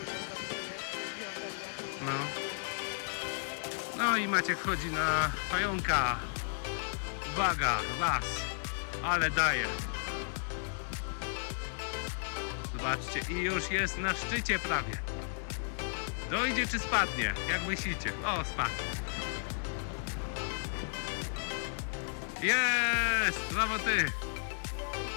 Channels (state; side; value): silent; right; digital silence